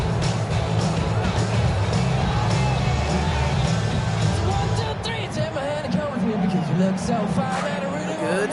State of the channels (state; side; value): identical; both; correlation 1.00